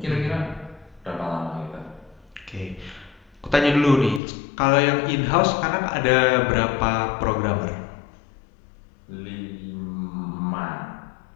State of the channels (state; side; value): drops out; right; at 4.2 s